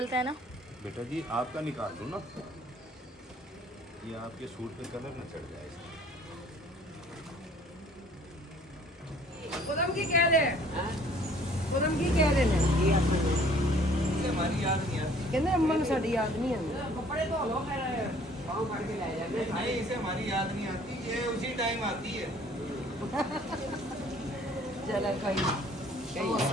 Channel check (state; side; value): normal; both; correlation 0.56